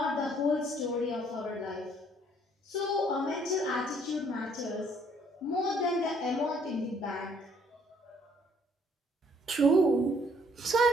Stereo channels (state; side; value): normal; both; correlation 0.63